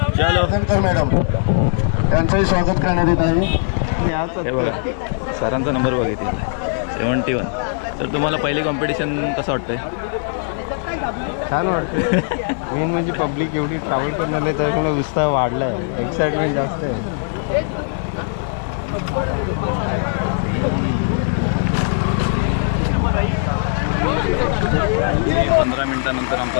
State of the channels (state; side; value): silent; right; digital silence